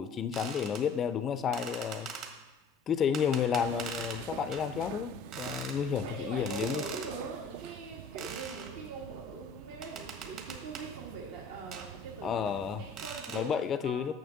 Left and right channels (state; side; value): quieter; right; 4.7 dB